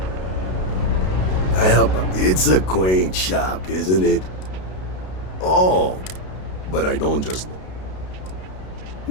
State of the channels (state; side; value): late; right; 32 ms